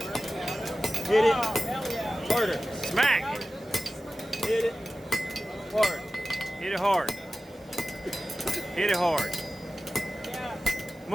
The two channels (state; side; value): normal; both; correlation 0.95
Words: Hit it harder. Smack! Hit it hard. Hit it hard. Hit it hard.